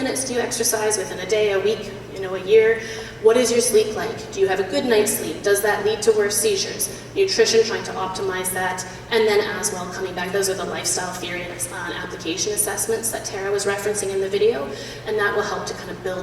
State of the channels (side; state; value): both; identical; correlation 1.00